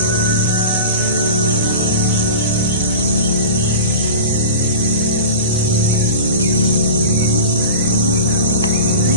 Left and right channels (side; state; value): both; inverted; correlation -0.33